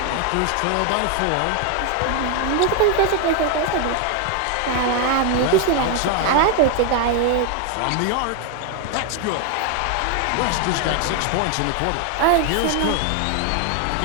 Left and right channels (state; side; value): different; both; correlation 0.01